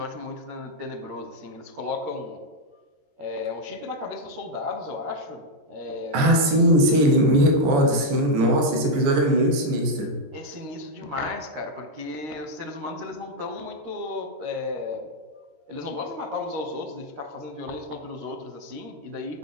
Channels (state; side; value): late; left; 14 ms